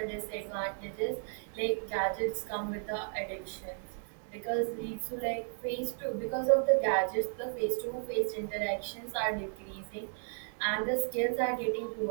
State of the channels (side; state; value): left; silent; 55 dB below the other